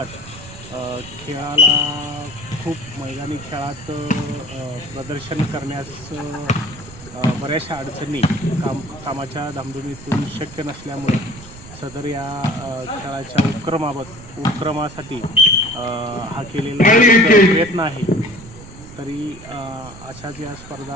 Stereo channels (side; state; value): right; noise; rumble, 16 dB below the sound